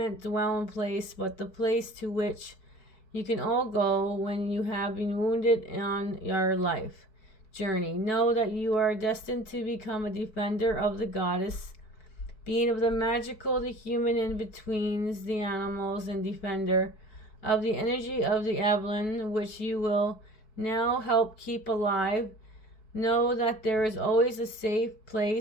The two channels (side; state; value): right; late; 4.6 ms